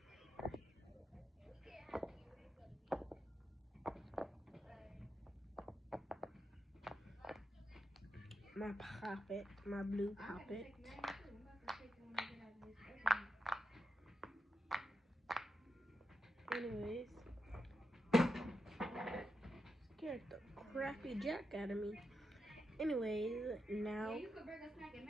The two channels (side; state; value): both; normal; correlation 0.86